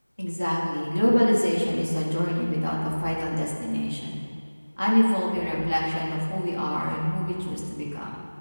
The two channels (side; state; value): both; inverted; correlation -1.00